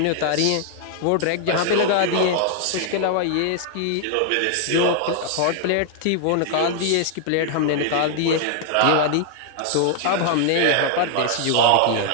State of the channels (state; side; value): different; both; correlation 0.00